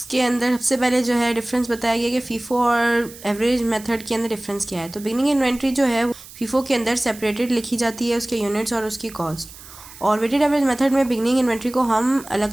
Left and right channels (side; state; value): right; noise; hiss, 18 dB below the sound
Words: अंदर सबसे पहले जो है डिफरेंस बताया गया कि फीफो और एवरेज मेथड के अंदर डिफरेंस क्या है। तो बिगनिंग इन्वेंट्री जो है फीफो के अंदर सेपरेटेड लिखी जाती है, उसके यूनिट्स और उसकी कॉस्ट। और वेटेड एवरेज मेथड में बिगनिंग इन्वेंट्री को हम अलग